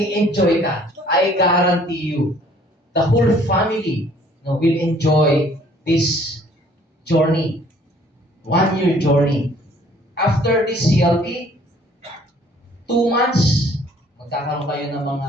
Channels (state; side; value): normal; both; correlation 0.57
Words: ka. I guarantee you, the whole family will enjoy this journey. 1 year journey. After this CLP, 2 months, magkakaroon kayo ng